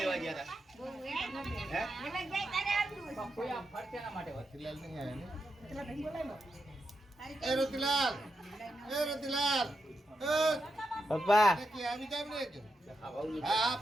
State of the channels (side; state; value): both; normal; correlation 0.86